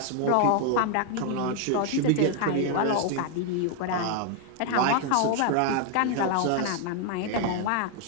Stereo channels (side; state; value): both; different; correlation 0.00